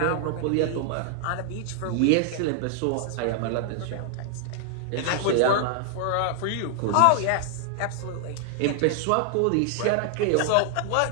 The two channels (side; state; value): both; different; correlation 0.00